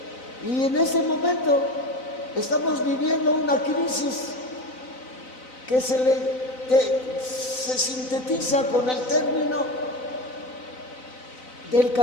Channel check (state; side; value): late; right; 4.0 ms